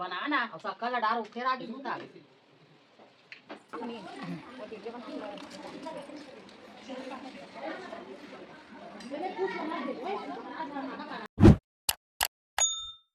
और शक्कर ला डालो फिर आगे दूध आगे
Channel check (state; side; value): identical; both; correlation 1.00